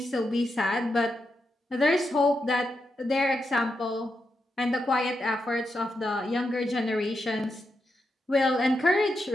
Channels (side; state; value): both; normal; correlation 0.85